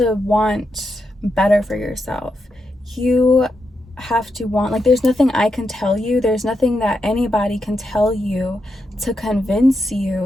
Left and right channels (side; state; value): both; normal; correlation 0.85